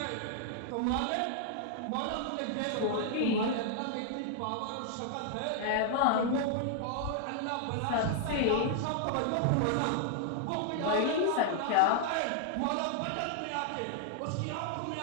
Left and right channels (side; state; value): both; different; correlation -0.01